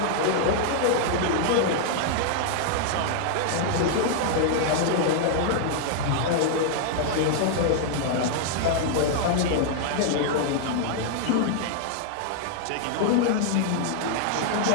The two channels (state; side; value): different; both; correlation -0.01